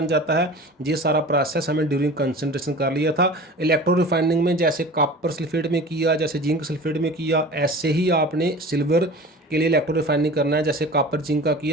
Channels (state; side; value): normal; both; correlation 0.38